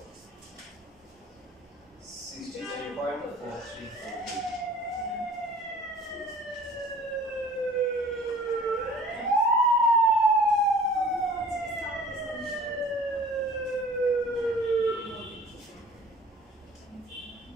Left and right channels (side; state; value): both; normal; correlation 0.48